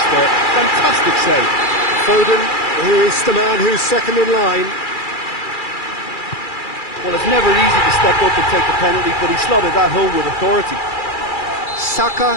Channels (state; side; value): late; right; 2.3 ms